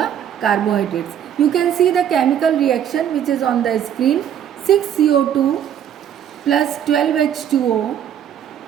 carbohydrates. You can see the chemical reaction which is on the screen. 6CO2 plus 12H2O,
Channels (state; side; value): quieter; left; 9.5 dB